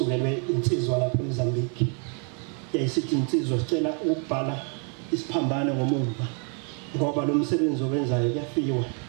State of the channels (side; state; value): left; quieter; 39.6 dB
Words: insizwa lapha eMozambique yayisithi insizwa sicela ukubhala isiphambano ngomumva ngoba lo msebenzi owenzayo kuyafiwa